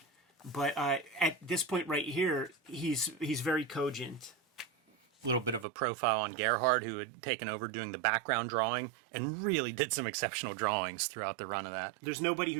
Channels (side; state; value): left; drops out; at 5.7 s